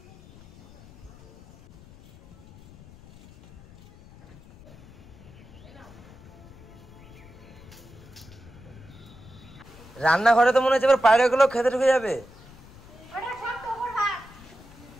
রান্নাঘরে তো মনে হচ্ছে এবার পায়রা গুলো খেতে ঢুকে যাবে।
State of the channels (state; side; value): noise; left; rumble, 21 dB below the sound